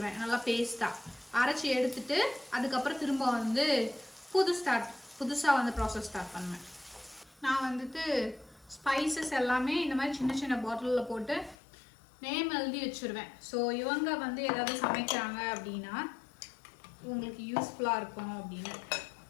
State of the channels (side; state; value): right; drops out; at 11.6 s